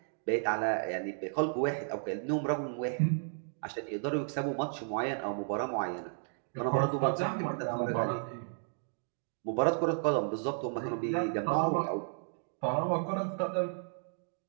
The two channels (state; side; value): silent; left; digital silence